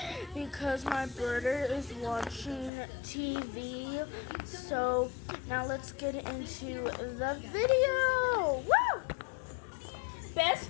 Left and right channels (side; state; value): right; drops out; at 2.7 s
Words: because my brother is watching TV. So now let's get into the video. Woo! Best